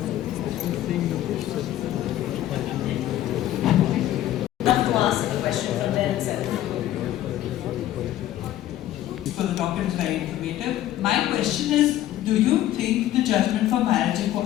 Love to ask a question from there itself. So the talk is very informative. My question is, do you think the judgment for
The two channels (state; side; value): quieter; right; 13.3 dB